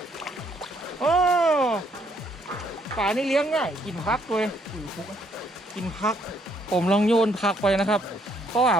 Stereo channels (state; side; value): normal; both; correlation 0.69